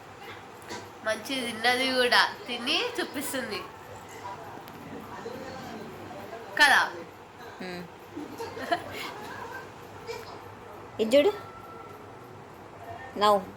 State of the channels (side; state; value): both; identical; correlation 1.00